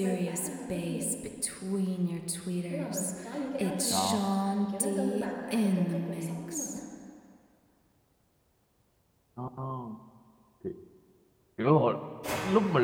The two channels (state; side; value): identical; both; correlation 1.00